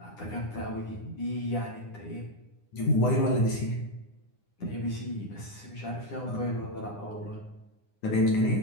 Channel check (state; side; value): late; right; 9.8 ms